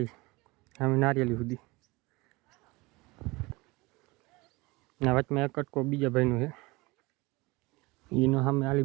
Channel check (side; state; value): left; quieter; 23.4 dB